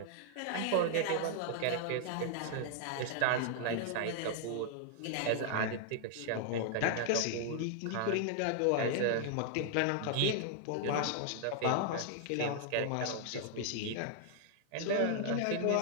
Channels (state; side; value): different; both; correlation -0.01